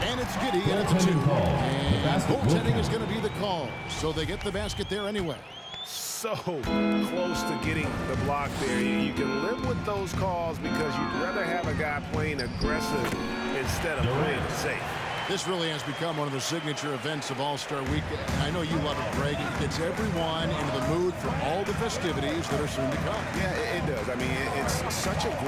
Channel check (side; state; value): both; identical; correlation 1.00